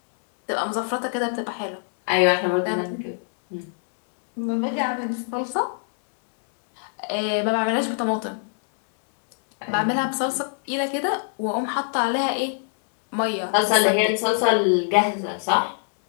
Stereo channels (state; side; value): silent; right; digital silence